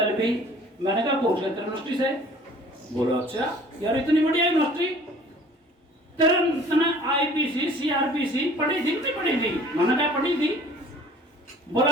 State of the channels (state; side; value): normal; both; correlation 0.50